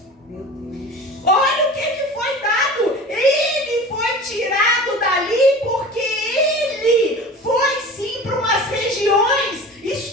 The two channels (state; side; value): normal; both; correlation 0.37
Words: Olha o que foi dado. Ele foi tirado dali porque ele foi sim para umas regiões